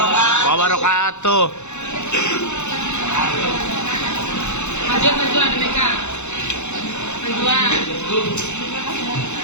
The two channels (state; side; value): late; right; 0.83 ms